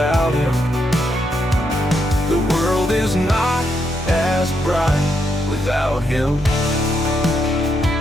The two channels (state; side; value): normal; both; correlation 0.79